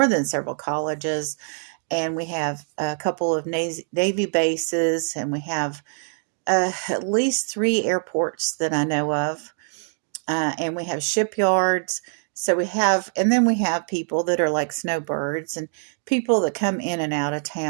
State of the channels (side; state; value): left; silent; 63 dB below the other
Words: than several colleges, and we have a couple of Navy bases, and we have at least 3 airports that I know of, and we have shipyards. So and then we have people that are like snowbirds, and people that come in and out of